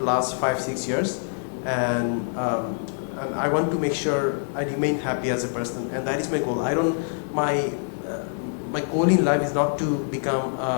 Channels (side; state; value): right; silent; digital silence